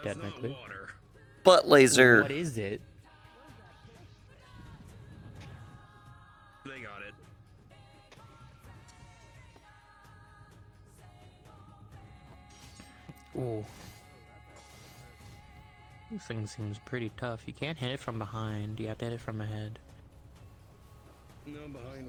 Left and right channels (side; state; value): both; identical; correlation 1.00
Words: technically. Butt laser. What is it? They got it. Ooh. This thing seems pretty tough. You can't hit it from behind. You have to hit it from ahead. No,